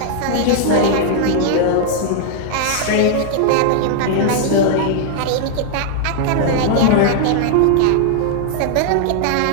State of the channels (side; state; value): both; different; correlation 0.00